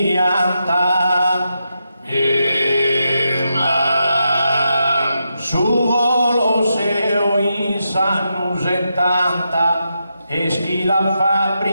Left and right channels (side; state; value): both; inverted; correlation -0.85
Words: su Colosseo in sanno 70 e schi la